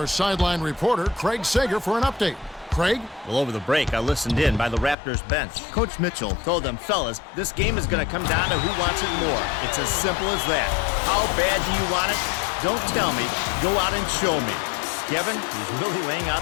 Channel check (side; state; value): right; drops out; at 5.0 s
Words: sideline reporter, Craig Sager, for an update. Craig? Well, over the break, I listened in by the Raptors bench. Coach Mitchell told them, fellas, this game is going to come down to who wants it more. It's as simple as that. How bad do you want it? Don't tell me. Go out and show me. Kevin, he's really laying out